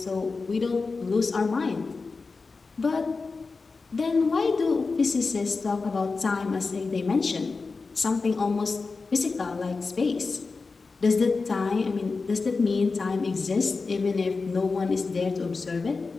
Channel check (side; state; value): right; quieter; 4.2 dB